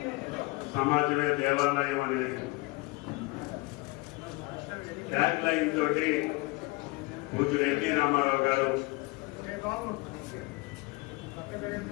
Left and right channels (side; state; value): right; quieter; 24.1 dB